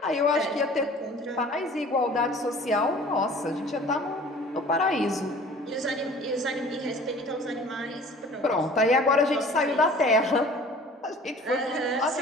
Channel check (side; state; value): both; normal; correlation 0.47